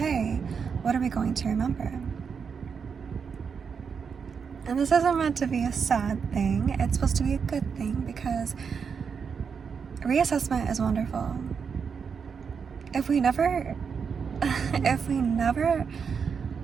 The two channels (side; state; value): left; quieter; 6.2 dB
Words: what are we going to remember? And this isn't meant to be a sad thing, it's supposed to be a good thing, because reassessment is wonderful. If we never